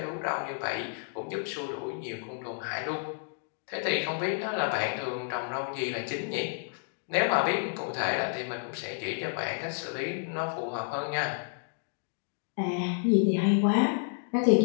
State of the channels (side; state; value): right; silent; digital silence